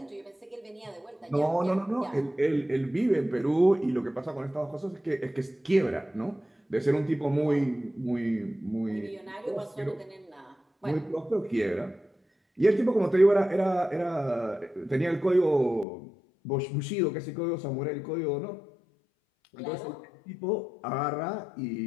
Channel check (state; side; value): drops out; right; at 15.9 s